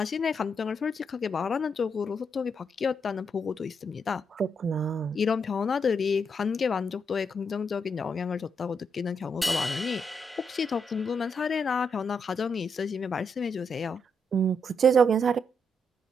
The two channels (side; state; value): both; normal; correlation 0.79